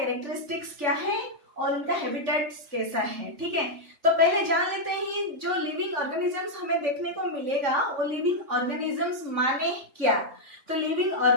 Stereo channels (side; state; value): left; late; 3.5 ms